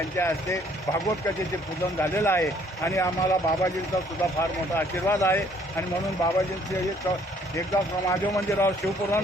हस्ते भागवत कथेचे पूजन झालेलं आहे. आणि आम्हाला बाबाजींचा सुद्धा फार मोठा आशीर्वाद आहे आणि म्हणून बाबाजींचे एकदा महादेव मंदिरावर शिवपुराण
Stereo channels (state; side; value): normal; both; correlation 0.62